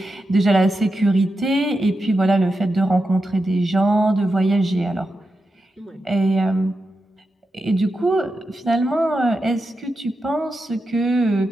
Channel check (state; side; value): normal; both; correlation 0.88